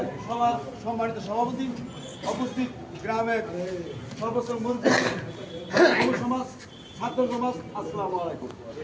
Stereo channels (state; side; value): identical; both; correlation 1.00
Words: সবার সম্মানিত সভাপতি উপস্থিত, গ্রামের সর্বোচ্চ মুরব্বী, যুব সমাজ, ছাত্র সমাজ, আসসালামু আলাইকুম।